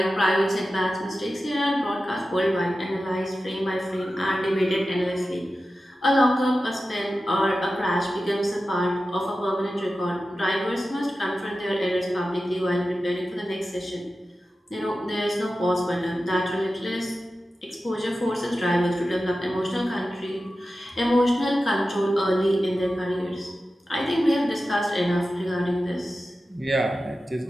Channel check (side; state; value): both; normal; correlation 0.93